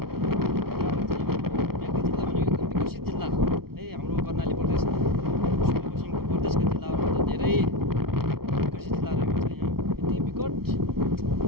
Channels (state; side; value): late; left; 0.94 ms